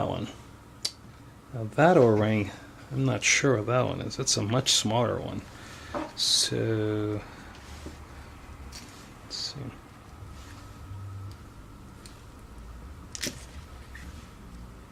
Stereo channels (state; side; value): identical; both; correlation 1.00